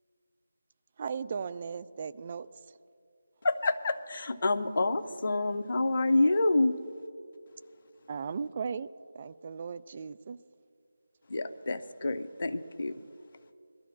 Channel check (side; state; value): both; inverted; correlation -0.93